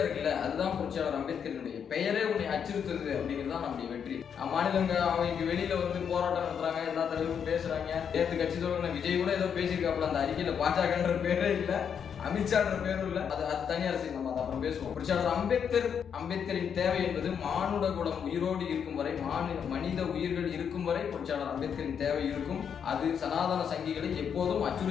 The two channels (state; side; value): quieter; right; 7.6 dB